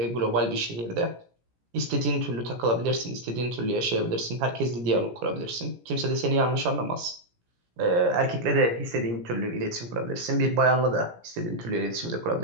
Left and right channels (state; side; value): late; left; 17 ms